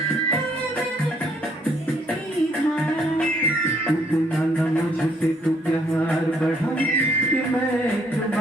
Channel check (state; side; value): normal; both; correlation 0.67